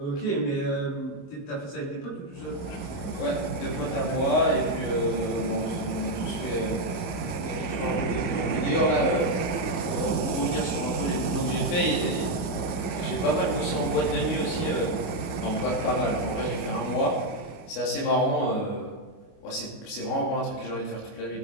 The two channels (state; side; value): late; right; 29 ms